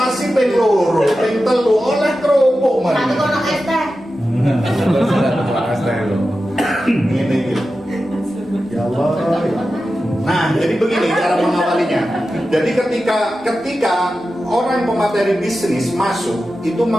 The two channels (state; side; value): normal; both; correlation 0.92